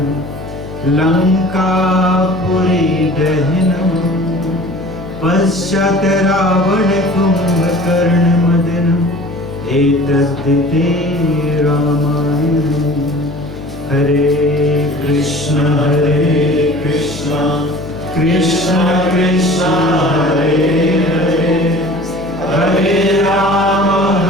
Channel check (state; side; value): noise; left; hum, 13 dB below the sound